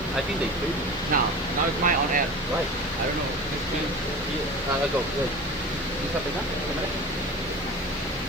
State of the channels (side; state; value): both; normal; correlation 0.34